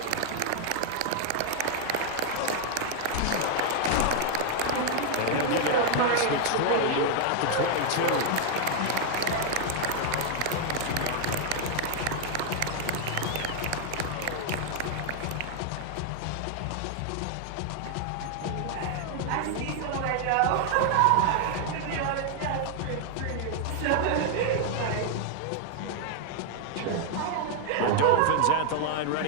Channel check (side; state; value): both; different; correlation 0.00